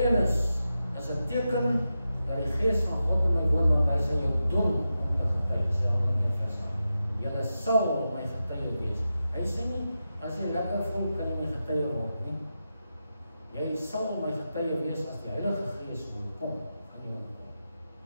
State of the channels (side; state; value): both; inverted; correlation -0.90